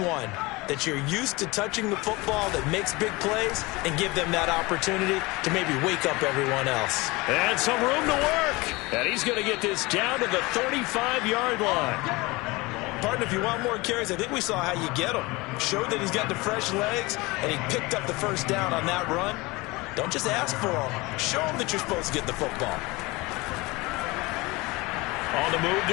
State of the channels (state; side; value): quieter; right; 23.3 dB